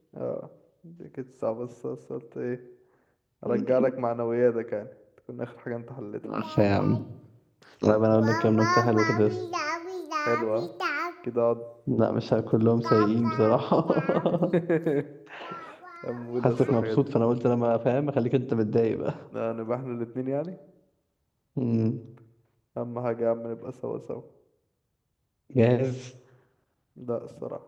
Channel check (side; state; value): both; identical; correlation 1.00